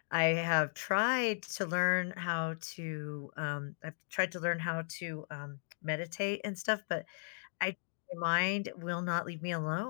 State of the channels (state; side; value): silent; right; digital silence